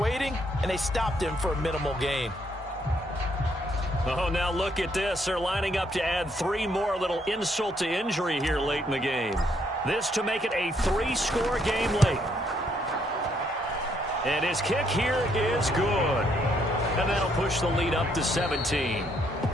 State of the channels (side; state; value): both; normal; correlation 0.71